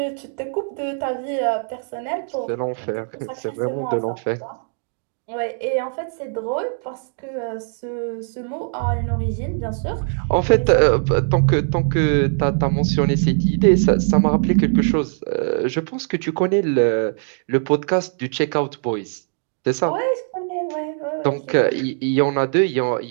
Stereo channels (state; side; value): silent; left; 59 dB below the other